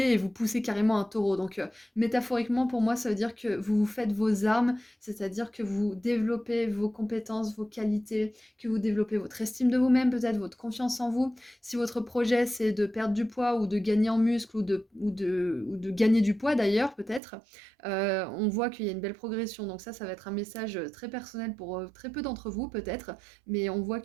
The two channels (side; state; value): left; drops out; at 17.2 s